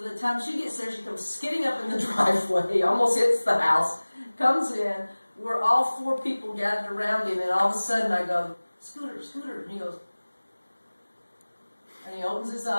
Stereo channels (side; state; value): both; inverted; correlation -1.00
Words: time she gets there, she comes skidding up in the driveway, almost hits the house, comes in. We're all 4 people gathered around him, and all of a sudden I go, "Scooter, Scooter," and he goes, and he opens his